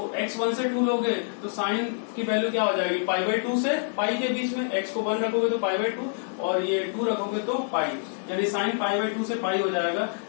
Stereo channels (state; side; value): silent; right; digital silence